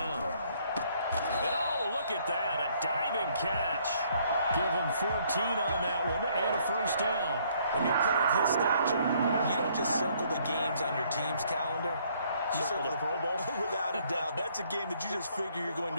And oh, look at that, a diving catch. Give him 14 on that one and a first down. When you're a player of his stature, you don't just circle the games on your team's calendar. You circle the Pro Bowl? Without a doubt. That's a game that you just figure you're going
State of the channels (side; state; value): both; inverted; correlation -0.65